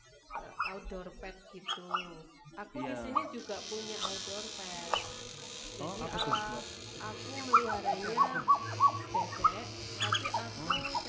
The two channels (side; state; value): both; identical; correlation 1.00